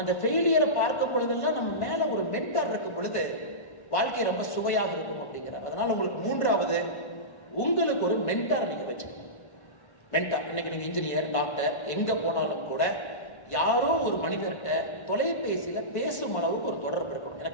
இந்த ஃபெயிலியரை பார்க்கும் பொழுதெல்லாம் நம்ம மேல ஒரு மென்டார் இருக்கும் பொழுது வாழ்க்கை ரொம்ப சுவையாக இருக்கும் அப்படிங்கிறார். அதனால உங்களுக்கு 3வது உங்களுக்கு ஒரு மென்டார் நீங்க வச்சுக்கணும். மென்டார் இன்னைக்கு நீங்க இன்ஜினியர் டாக்டர் எங்க போனாலும் கூட யாரோ ஒரு மனிதர்கிட்ட தொலைபேசியில பேசும் அளவுக்கு ஒரு தொடர்பு இருக்கணும்.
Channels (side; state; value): right; late; 1.5 ms